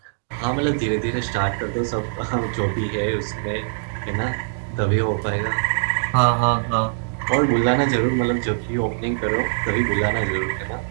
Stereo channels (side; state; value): left; silent; digital silence